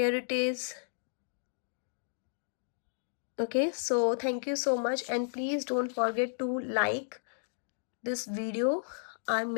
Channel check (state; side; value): silent; right; digital silence